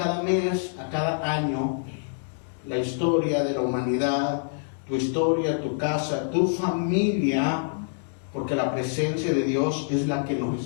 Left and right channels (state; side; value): silent; right; digital silence